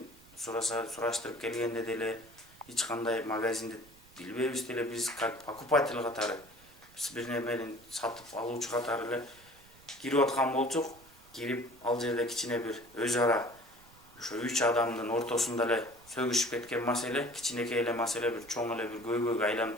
сураштырып келгенде деле эч кандай магазинди билбейбиз деле, биз как покупатель катары, биз бир немени сатып алуучу катары эле кирип аткан болчук. Кирип ал жерде кичине бир өз ара ошо 3 адамдын ортосунда эле сөгүшүп кеткен маселе, кичинекей эле маселе бир чоң эле бир көйгөйгө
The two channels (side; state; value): right; noise; rumble, 26 dB below the sound